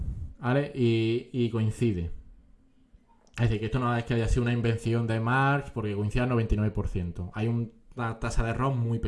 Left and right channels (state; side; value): identical; both; correlation 1.00